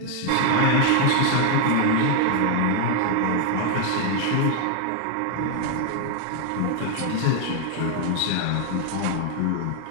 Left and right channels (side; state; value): both; different; correlation 0.00